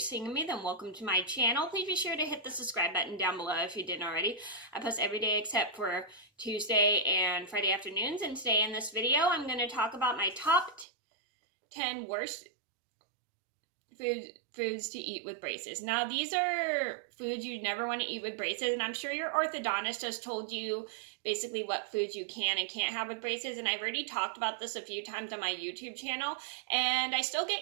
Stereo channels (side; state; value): left; drops out; at 10.9 s